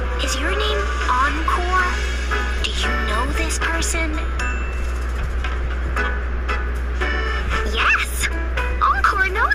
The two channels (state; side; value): identical; both; correlation 1.00